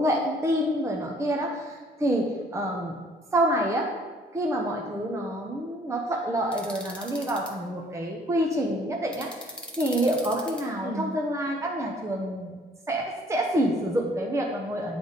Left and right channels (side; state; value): both; normal; correlation 0.59